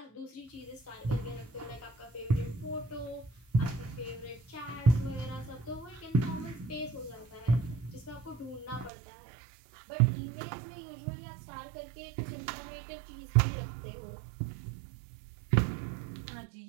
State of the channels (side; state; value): left; drops out; at 8.9 s